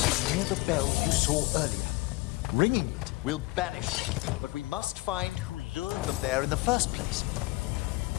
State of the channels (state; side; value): quieter; right; 21.9 dB